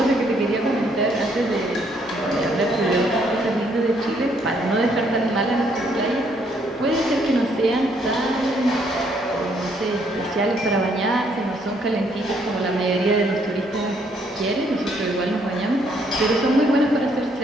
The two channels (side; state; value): both; normal; correlation 0.69